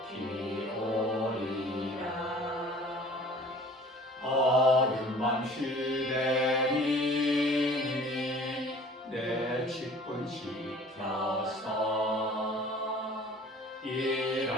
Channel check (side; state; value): both; normal; correlation 0.48